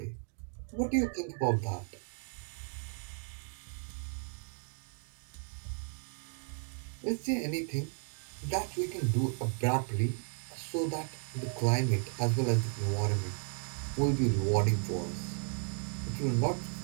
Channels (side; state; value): left; silent; 55 dB below the other